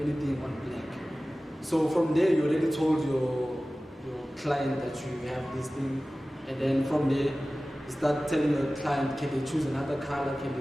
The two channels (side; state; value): both; normal; correlation 0.97